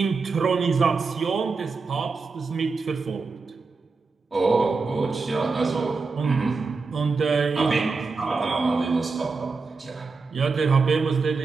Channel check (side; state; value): left; quieter; 4.3 dB